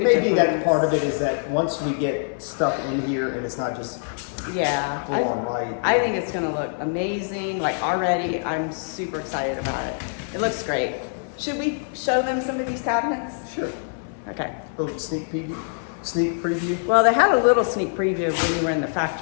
a may be difference. that part of it is that once we get stuff in here and it's not just Yeah, full on light. I think it's gonna look amazing. Like already, I'm super excited about it. It looks great. Should we show them some of these cabinets? Sure. Okay. A little sneak peek. sneak preview? Well, they had a little sneak preview when we were in the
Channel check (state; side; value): silent; right; 58 dB below the other